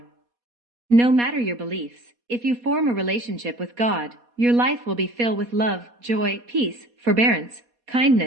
No matter your beliefs, if you form a relationship with God, your life will be filled with love, joy, peace, forbearance,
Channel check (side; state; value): left; late; 4.2 ms